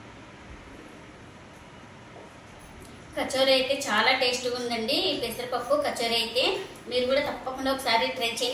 కచోరీ అయితే చాలా టేస్ట్గా ఉందండి. ఈ పెసరపప్పు కచోరీ అయితే మీరు కూడా తప్పకుండా ఒకసారి ట్రై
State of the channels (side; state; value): both; identical; correlation 1.00